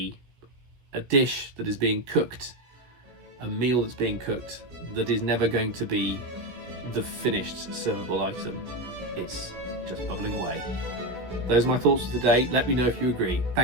dish that is being cooked, a meal that's being cooked, that is never going to be the finished servable item. It's just bubbling away. Those are my thoughts for today. Let me know if you agree.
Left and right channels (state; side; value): late; left; 16 ms